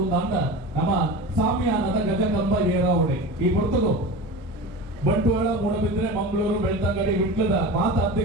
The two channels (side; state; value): both; normal; correlation 0.30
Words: ಅಂದ ನಮ್ಮ ಸಾಮ್ಯಾನದ ಗಜಕಂಬ ಏರಾವಣೆ ಈ ಹೊರತುಗು ಬಂಟ್ವಾಳ ಮೂಡಬಿದ್ರೆ ಮಂಗಳೂರು ಬೆಳ್ತಂಗಡಿ ವಿಟ್ಲದ ಮಾತ